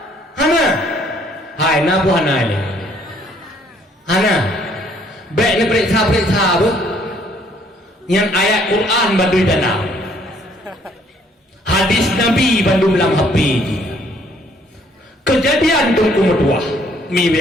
Hana. Hai na bu hana ni. Hana. Baik ni periksa apa? Yang ayat Quran bandui danau. Hadis Nabi bandung dalam HP ni. Kejadian tunggu medua, mi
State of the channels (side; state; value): both; normal; correlation 0.64